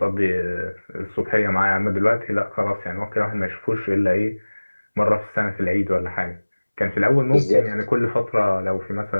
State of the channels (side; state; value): both; inverted; correlation -1.00